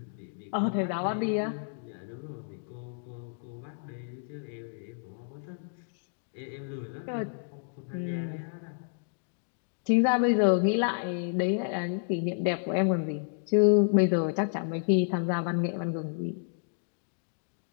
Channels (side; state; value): right; silent; digital silence